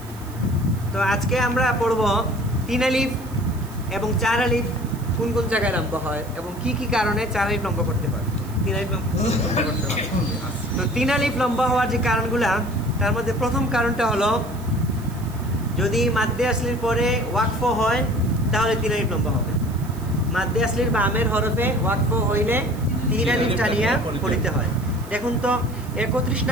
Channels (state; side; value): noise; right; hiss, 20 dB below the sound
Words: তো আজকে আমরা পড়ব 3 আলিফ এবং 4 আলিফ কোন কোন জায়গায় লম্বা হয় এবং কি কি কারণে 4 আলিফ লম্বা করতে হয়, 3 আলিফ লম্বা করতে হয়। তো 3 আলিফ লম্বা হওয়ার যে কারণগুলা, তার মধ্যে প্রথম কারণটা হলো যদি মাদ্দে আসলির পরে ওয়াকফ হয় তাহলে 3 আলিফ লম্বা হবে। মাদ্দে আসলির বামের হরফে ওয়াকফ হইলে 3 আলিফ টানিয়া পড়িতে হয়। দেখুন তো 31